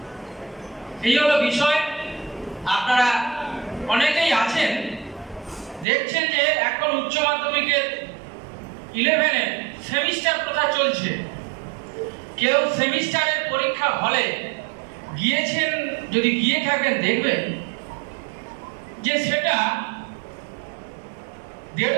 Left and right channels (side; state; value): left; drops out; at 5.9 s